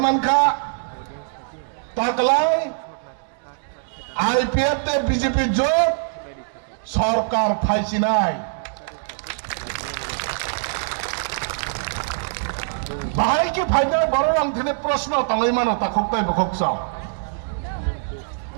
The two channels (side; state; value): left; silent; digital silence